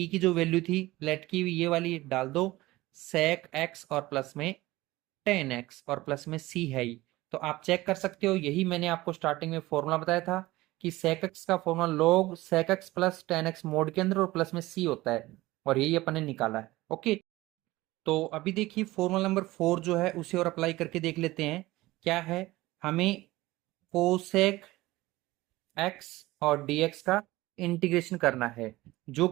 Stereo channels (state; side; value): quieter; left; 18.7 dB